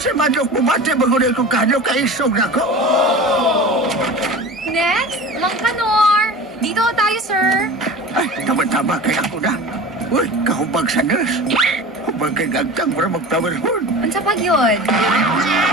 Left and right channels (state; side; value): normal; both; correlation 0.35